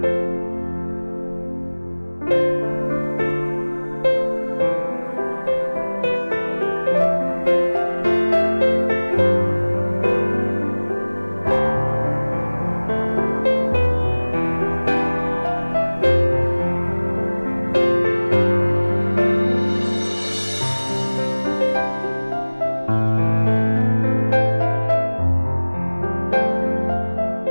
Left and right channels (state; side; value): inverted; both; correlation -1.00